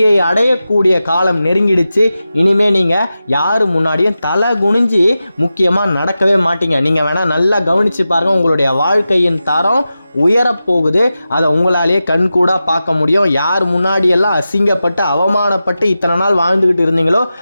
அடையக்கூடிய காலம் நெருங்கிடுச்சு. இனிமே நீங்கள் யார் முன்னாடியும் தலை குனிஞ்சு முக்கியமாக நடக்கவே மாட்டீங்க. நீங்கள் வேணால் நல்லா கவனித்து பாருங்கள், உங்களுடைய வாழ்க்கையின் தரம் உயரப்போகுது. அதை உங்களாலேயே கண்கூடா பார்க்க முடியும். யார் முன்னாடியெல்லாம் அசிங்கப்பட்டு அவமானப்பட்டு இத்தனை நாள் வாழ்ந்துக்கிட்டு இருந்தீங்களோ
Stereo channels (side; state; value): both; inverted; correlation -0.93